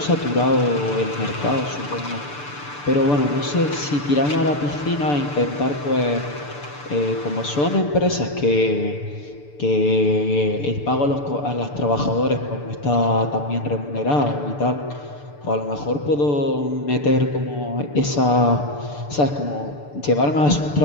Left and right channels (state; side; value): late; right; 6.8 ms